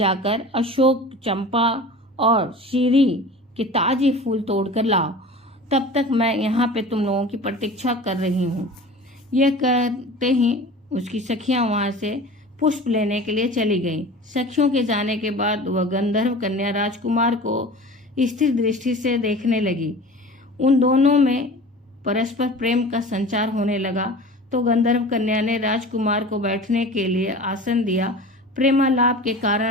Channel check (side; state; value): both; normal; correlation 0.38